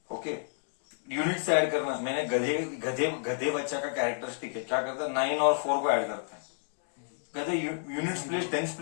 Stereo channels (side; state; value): right; silent; digital silence